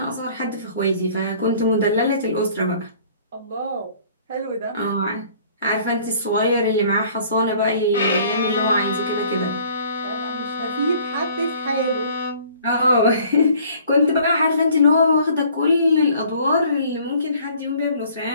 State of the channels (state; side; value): inverted; both; correlation -0.55